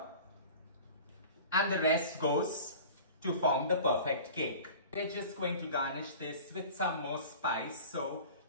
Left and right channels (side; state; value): both; inverted; correlation -0.40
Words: and the rest goes to form the perfect cake. We're just going to garnish this with some more spice. So